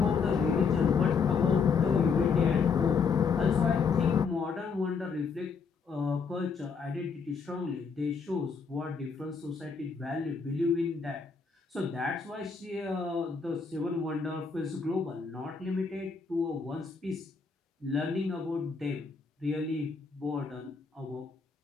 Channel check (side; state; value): right; quieter; 5.4 dB